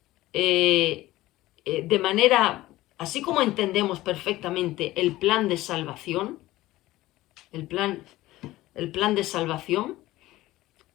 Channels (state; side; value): quieter; right; 17.1 dB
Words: de manera, así como entendemos perfectamente el plan de salvación, el plan de salvación,